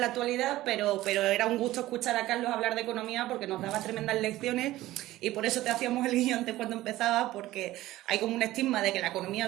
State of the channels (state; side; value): quieter; left; 16.1 dB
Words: la actualidad, pero era un gusto escuchar a Carlos hablar de economía porque nos daba tremendas lecciones y por eso te hacíamos el guión antes cuando empezaba, porque hay como un estigma de que la economía